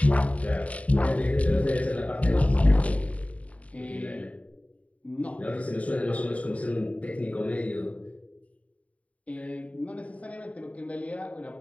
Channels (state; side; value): late; right; 0.067 ms